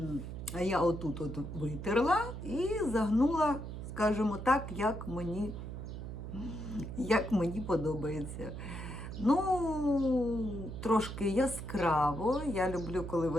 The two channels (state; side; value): noise; right; hum, 8 dB below the sound